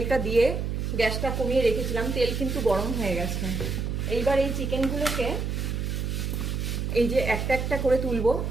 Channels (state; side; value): noise; right; hum, 2 dB below the sound